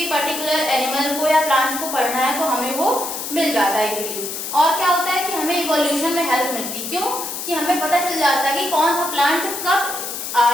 पर्टिकुलर एनिमल को या प्लांट्स को पढ़ना है तो हमें वो मिल जाता है इजीली। और क्या होता है कि हमें इवोल्यूशन में हेल्प मिलती। क्यों? कि हमें पता चल जाता है कि कौन सा प्लांट कब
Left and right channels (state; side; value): noise; left; hiss, 6 dB below the sound